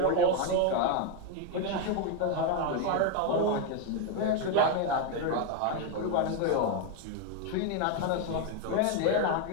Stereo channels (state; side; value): different; both; correlation 0.01